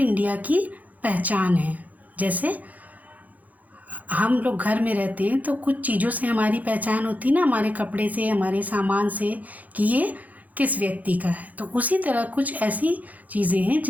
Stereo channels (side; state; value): left; late; 0.078 ms